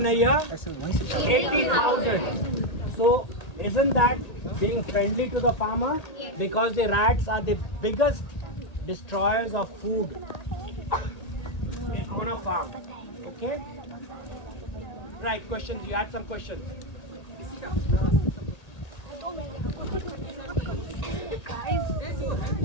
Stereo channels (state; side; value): late; right; 1.8 ms